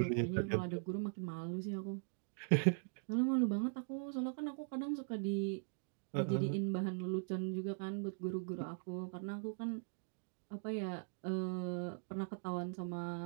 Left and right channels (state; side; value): silent; left; digital silence